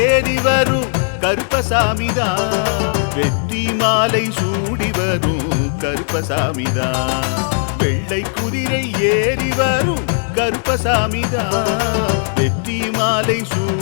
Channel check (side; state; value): right; silent; digital silence